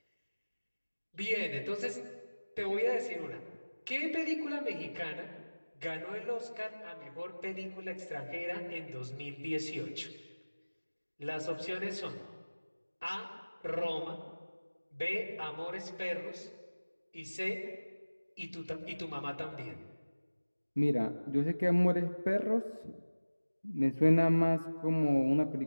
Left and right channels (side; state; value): both; inverted; correlation -1.00